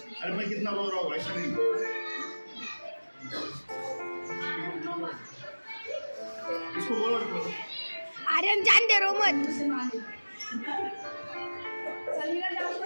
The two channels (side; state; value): both; inverted; correlation -1.00